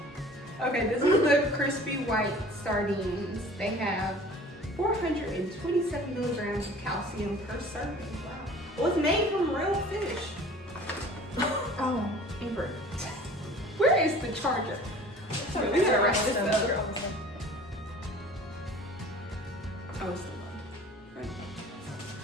Okay, this is the crispy white sardines. They have 427 milligrams of calcium per serving. Wow. Well, it's made from real fish. Oh, Amber. Where is the charger? Sorry, we gotta wrap this up. Oh, it's the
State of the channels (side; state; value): both; normal; correlation 0.46